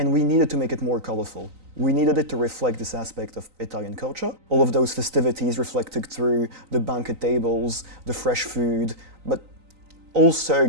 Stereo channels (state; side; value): late; left; 3.9 ms